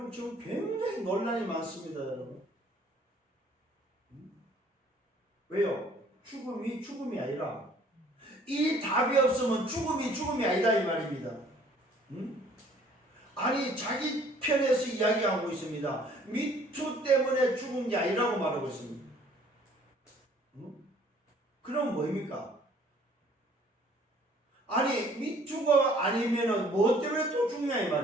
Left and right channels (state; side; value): normal; both; correlation 0.57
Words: 지금 굉장히 논란이 많습니다 여러분. 왜요? 죽음이 아니라 이 답이 없으면 죽음이 아니다 이 말입니다. 아니 자기 편에서 이야기하고 있습니다. 미투 때문에 죽은 게 아니라고 말하고 있습니다. 그럼 뭐입니까? 아니 미투가 아니면은 뭐 때문에 또 죽냐 이